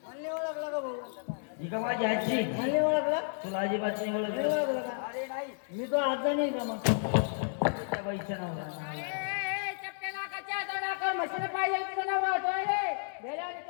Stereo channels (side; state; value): right; silent; digital silence